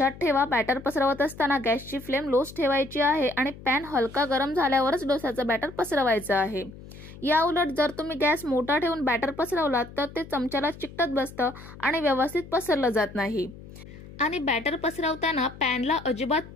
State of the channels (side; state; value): left; noise; hum, 17 dB below the sound